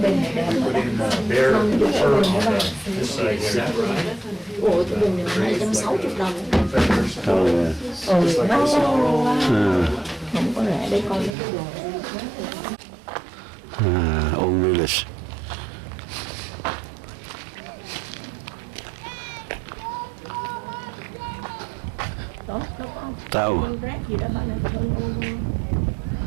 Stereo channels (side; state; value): left; drops out; at 11.4 s